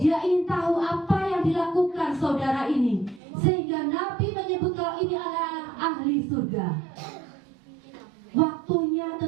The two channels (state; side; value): drops out; left; at 3.2 s